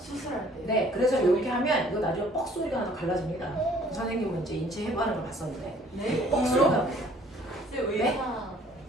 때. 네, 그래서 이렇게 하면 이거 나중에 뻑 소리가 나서 갈라집니다. 선생님은 이제 인체 해부하는 걸 봤었는데 네? 뻑 소리가 납니다. 왜, 네?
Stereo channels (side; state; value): both; normal; correlation 0.56